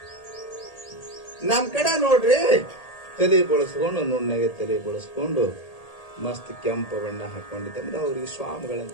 ನಮ್ ಕಡೆ ನೋಡ್ರಿ, ತಲೆ ಬಳಸ್ಕೊಂಡು, ನುಣ್ಣಗೆ ತಲೆ ಬಳಸ್ಕೊಂಡು ಮಸ್ತ್ ಕೆಂಪು ಬಣ್ಣ ಹಾಕೊಂಡಿದ್ದಂದ್ರೆ ಅವ್ರಿಗೆ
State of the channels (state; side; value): late; right; 1.8 ms